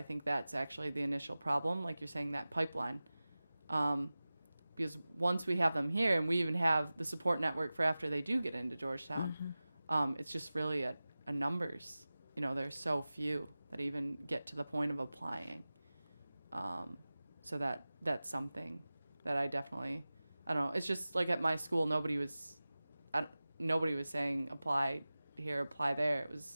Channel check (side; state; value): both; inverted; correlation -0.97